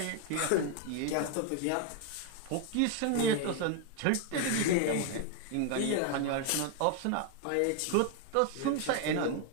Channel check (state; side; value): different; both; correlation 0.00